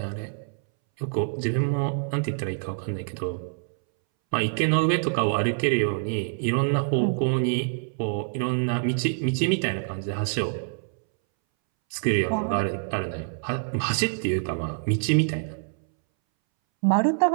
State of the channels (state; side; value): silent; left; 61 dB below the other